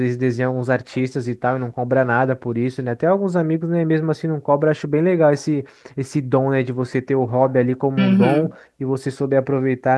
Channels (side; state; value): both; identical; correlation 1.00